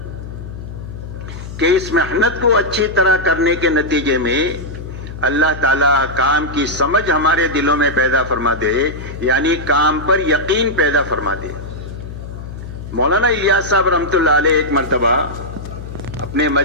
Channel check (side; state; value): left; noise; hum, 11 dB below the sound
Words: کہ اس محنت کو اچھی طرح کرنے کے نتیجے میں اللہ تعالیٰ کام کی سمجھ ہمارے دلوں میں پیدا فرما دے، یعنی کام پر یقین پیدا فرما دے۔ مولانا الیاس صاحب رحمۃ اللہ علیہ ایک مرتبہ اپنے